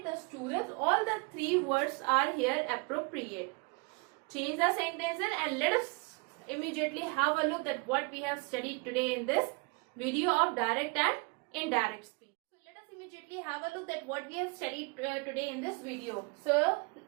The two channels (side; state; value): left; quieter; 31.1 dB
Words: the students. All the three words are here appropriate. Change the sentences and let us immediately have a look at what we have studied today in this video of direct and indirect speech. So let us immediately have a look at what we have studied today in this video. So